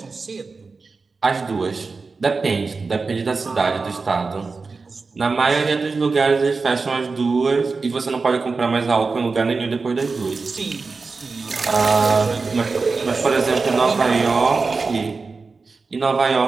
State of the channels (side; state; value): left; quieter; 4.3 dB